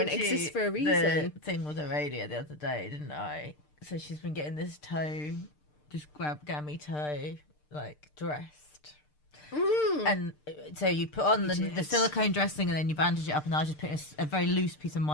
and it exists for a reason." The thing with Aurelia the other day, didn't I? So she's been getting this toe, just gammy toe, like dressed. And so you put on the silicone dressing and then you bandage it up, and I was just putting a very loose piece of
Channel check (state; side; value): late; right; 6.7 ms